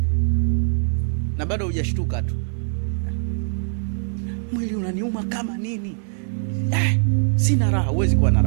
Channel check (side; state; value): left; silent; digital silence